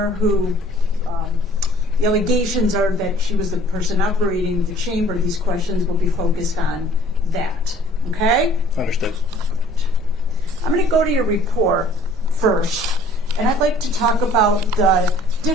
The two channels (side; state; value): both; normal; correlation 0.54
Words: who, the allegations are that she was the person operating the chamber. These questions will be focused on that. Okay? Understood. I'm going to go to your report first, and I'd like to talk about the